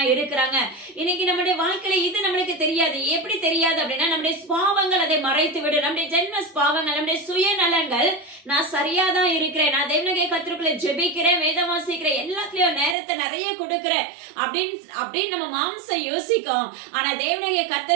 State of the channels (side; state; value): left; drops out; at 13.0 s